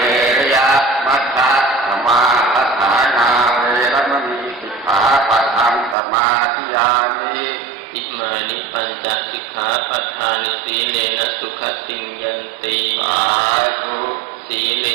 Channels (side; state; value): left; drops out; at 6.0 s